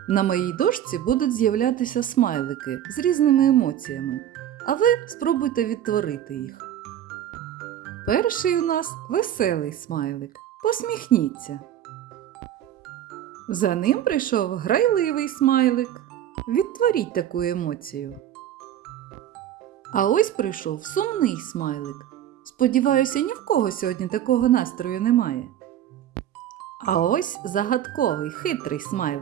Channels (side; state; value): left; quieter; 11.0 dB